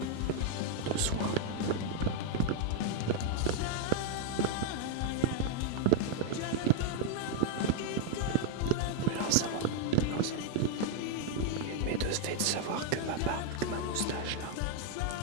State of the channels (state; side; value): different; both; correlation 0.00